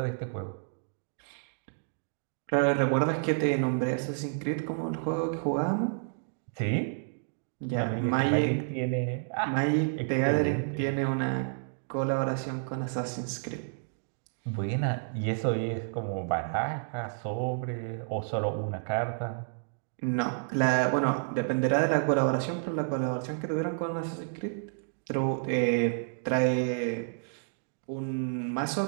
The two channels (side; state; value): left; silent; digital silence